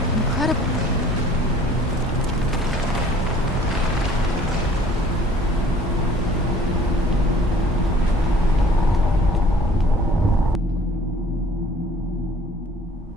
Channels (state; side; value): normal; both; correlation 0.53